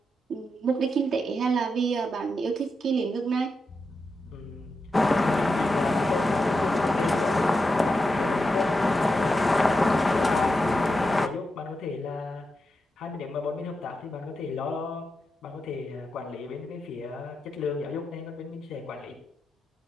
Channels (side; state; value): both; normal; correlation 0.87